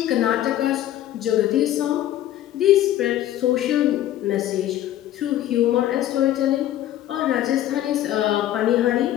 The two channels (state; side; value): quieter; right; 12.8 dB